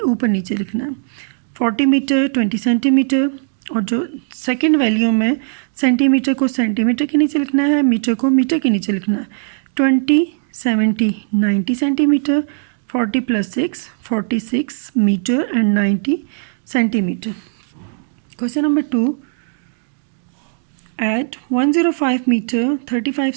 नीचे लिखना है. 40 मीटर 20 सेंटीमीटर, और जो सेकेंड वैल्यू में सेंटीमीटर को सेंटीमीटर के नीचे लिखना है, मीटर को मीटर के नीचे लिखना है. 20 70 90 centimetre, 40 + 6 46 metre and 90 centimetre. Question number 2. At 105 meter 35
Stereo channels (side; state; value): left; silent; digital silence